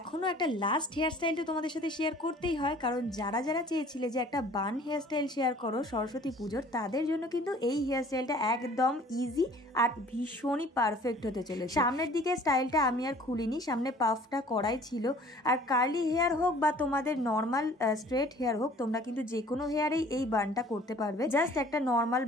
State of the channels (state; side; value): normal; both; correlation 0.51